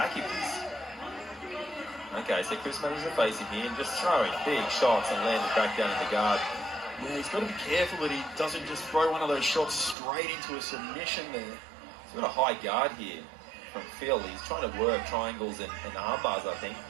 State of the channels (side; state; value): left; drops out; at 10.0 s